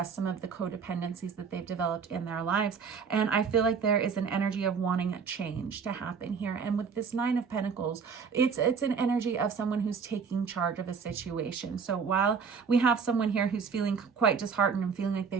some of the codependencies that they've developed in their lives. And I feel like there is an energy of wanting a change to happen here. And with this Nine of Pentacles, it's an energy of someone who's taking charge of a situation. So while we have someone here who's feeling quite disheartened and feeling like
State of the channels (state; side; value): quieter; left; 5.9 dB